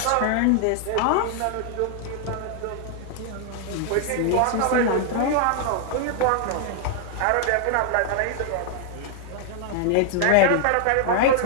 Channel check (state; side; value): different; both; correlation 0.00